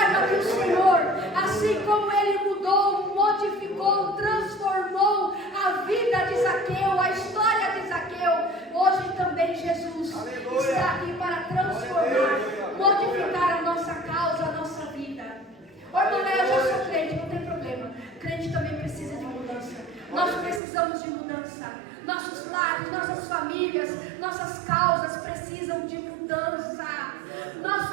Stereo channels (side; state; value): left; drops out; at 20.6 s